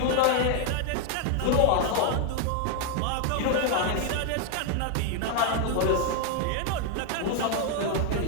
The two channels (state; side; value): different; both; correlation 0.00